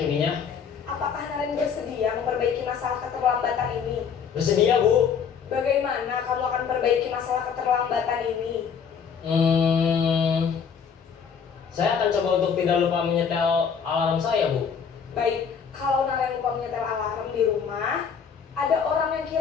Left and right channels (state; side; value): quieter; right; 6.8 dB